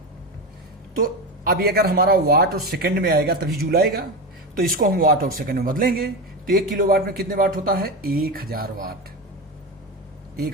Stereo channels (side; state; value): both; normal; correlation 0.18